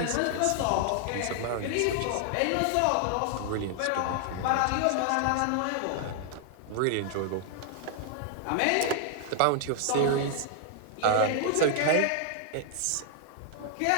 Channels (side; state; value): both; different; correlation 0.00